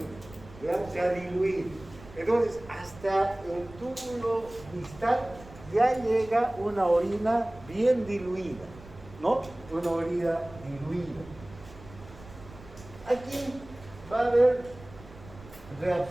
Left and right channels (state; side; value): noise; right; rumble, 19 dB below the sound